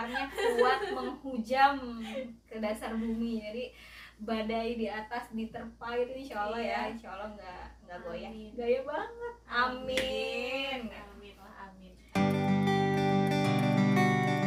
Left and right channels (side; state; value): both; identical; correlation 1.00